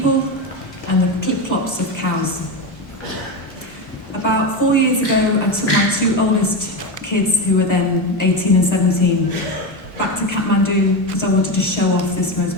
and the clip-clops of cows. About 4 years ago, I took my two oldest kids, who were then 18 and 17, back to Kathmandu because I wanted to show off this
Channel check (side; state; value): both; normal; correlation 0.16